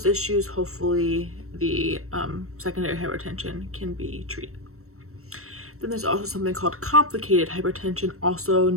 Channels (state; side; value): late; left; 0.63 ms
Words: issues, hopefully the secondary hypertension can be treated. Then there's also something called complicated hypertension, also